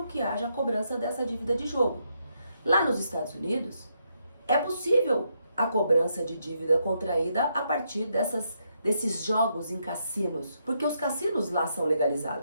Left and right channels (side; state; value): both; inverted; correlation -0.78